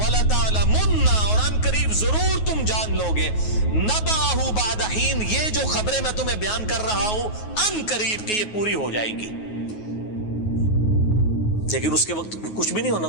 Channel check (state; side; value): late; right; 9.4 ms